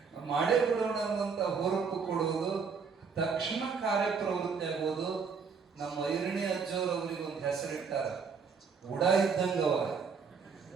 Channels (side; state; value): left; quieter; 5.6 dB